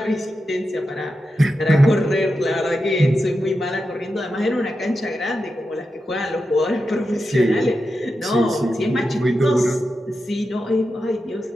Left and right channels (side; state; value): both; normal; correlation 0.89